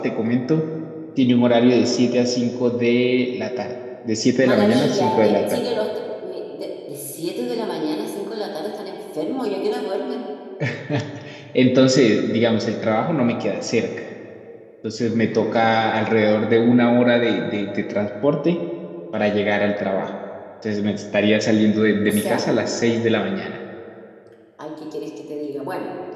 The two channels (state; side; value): identical; both; correlation 1.00